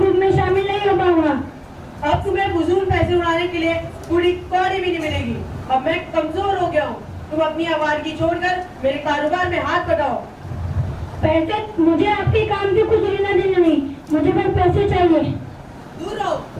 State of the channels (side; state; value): both; identical; correlation 1.00